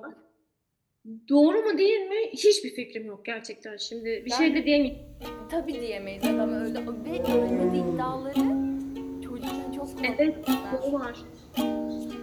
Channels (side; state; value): both; identical; correlation 1.00